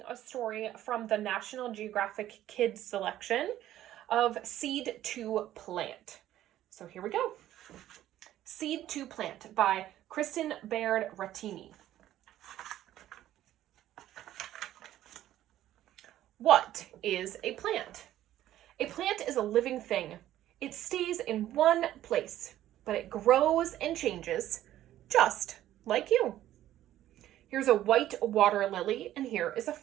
a story from the National Geographic Kids selection of Seed to Plant. So here we go. Seed to Plant by Kristen Baird Rattini. What is a plant? A plant is a living thing. It stays in one place, but it grows and changes, just like you. Here's a white water lily, and here is a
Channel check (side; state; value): left; quieter; 13.0 dB